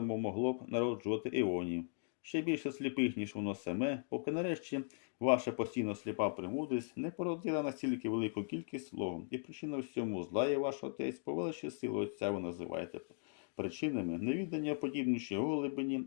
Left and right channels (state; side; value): silent; right; digital silence